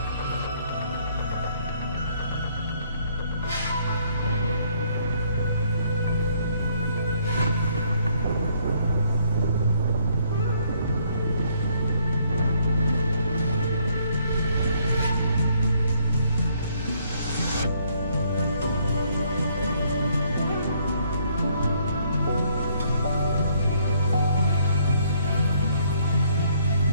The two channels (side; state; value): both; inverted; correlation -0.67